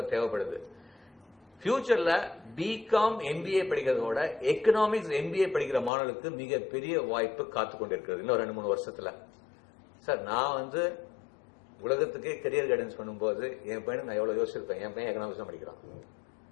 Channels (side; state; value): right; drops out; at 5.9 s